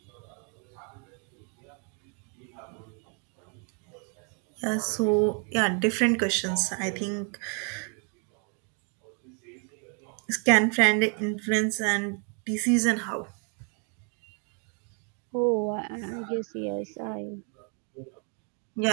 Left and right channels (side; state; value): left; quieter; 38.8 dB